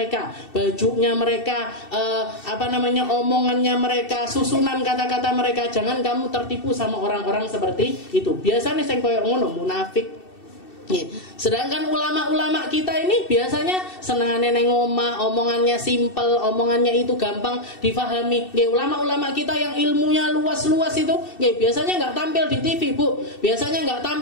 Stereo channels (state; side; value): late; right; 2.7 ms